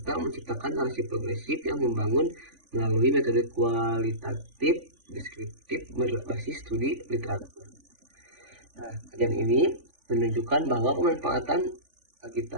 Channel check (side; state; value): left; late; 3.5 ms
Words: menciptakan narasi progresif yang membangun melalui metode kualitatif deskriptif berbasis studi literatur. Nah, kajian ini menunjukkan bahwa pemanfaatan